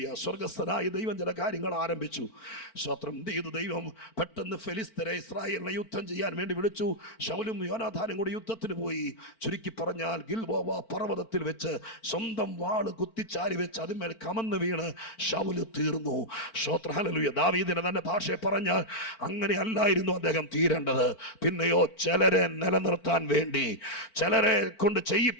സ്വർഗസ്ഥനായ ദൈവം ചില കാര്യങ്ങൾ ആരംഭിച്ചു. സ്തോത്രം. എന്ത് ചെയ്തു ദൈവം? പെട്ടെന്ന് ഫെലിസ്ത്യരെ ഇസ്രായേലിനെ യുദ്ധം ചെയ്യാൻ വേണ്ടി വിളിച്ചു. ശൗലും യോനാഥാനും കൂടി യുദ്ധത്തിന് പോയി. ചുരുക്കി പറഞ്ഞാൽ ഗിൽബോവ പർവ്വതത്തിൽ വെച്ച് സ്വന്തം വാള് കുത്തിച്ചാരി വെച്ച് അതിന്മേൽ കമന്ന് വീണ് ശൗല് തീർന്നു. സ്തോത്രം, ഹല്ലേലൂയ. ദാവീദിനെ തന്നെ ഭാഷയെ പറഞ്ഞാൽ അങ്ങനെ അല്ലായിരുന്നു അദ്ദേഹം തീരേണ്ടത്. പിന്നെയോ ചിലരെ നിലനിർത്താൻ വേണ്ടി, ചിലരെ കൊണ്ട്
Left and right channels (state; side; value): late; right; 4.4 ms